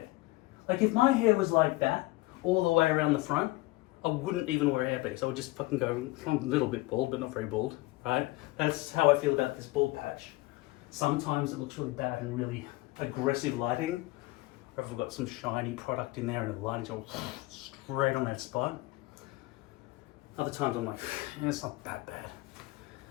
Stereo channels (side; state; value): right; quieter; 20.4 dB